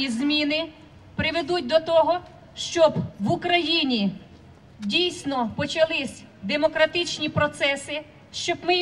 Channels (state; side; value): identical; both; correlation 1.00